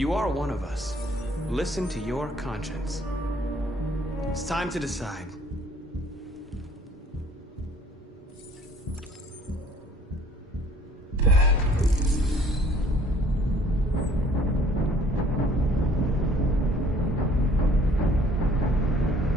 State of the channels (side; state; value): both; normal; correlation 0.57